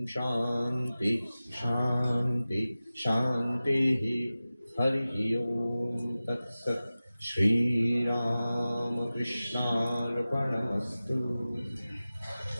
শান্তি শান্তি শান্তি, হরি ওম তৎসৎ। শ্রীরামকৃষ্ণার্পণমস্তু।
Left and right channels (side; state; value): both; inverted; correlation -0.96